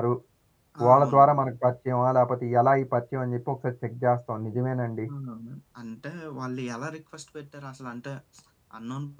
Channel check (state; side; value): identical; both; correlation 1.00